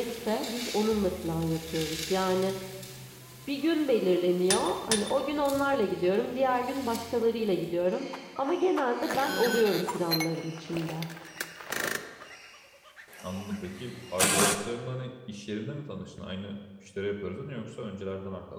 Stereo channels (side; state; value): both; identical; correlation 1.00